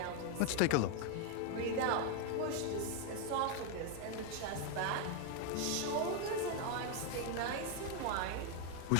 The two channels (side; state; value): both; different; correlation 0.01